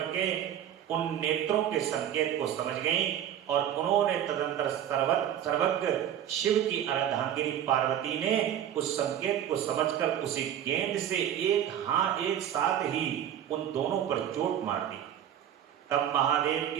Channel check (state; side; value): quieter; left; 10.4 dB